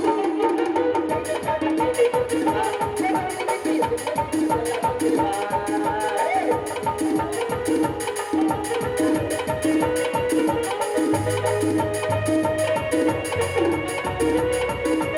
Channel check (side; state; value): both; identical; correlation 1.00